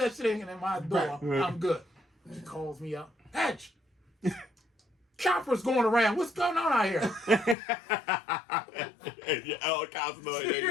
shit ain't in my door, Right. I'm good. She calls me up. Hedge. Chopper's going around. What's going on out here? Your helicopter noise.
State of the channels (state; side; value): drops out; right; at 7.6 s